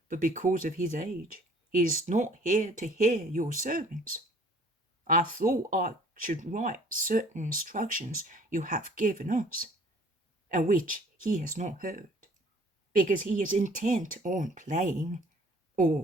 but because of his age, he is not here to hear your sermons. I thought I should write certain instructions you have given us, and which he has not heard, because he is intent on playing,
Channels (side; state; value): both; normal; correlation 0.54